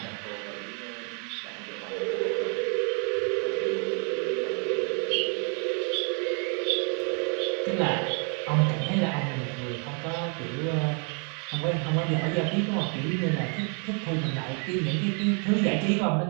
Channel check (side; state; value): left; quieter; 39.0 dB